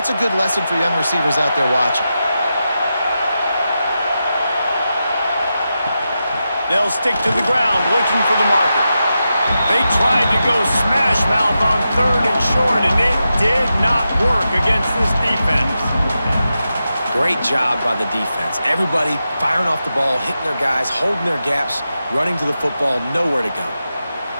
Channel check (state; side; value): inverted; both; correlation -0.89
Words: a good lesson for young receivers out there watching. They'll stick to the ground, looking for the marker. They tried to go smash mouth on third and short, and it did not work against this defense. Great job by the defense. Everybody firing off the ball, hitting their guys, holding their gaps, running to the football, nowhere to go.